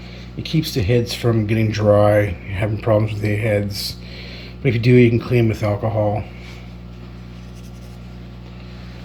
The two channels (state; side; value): identical; both; correlation 1.00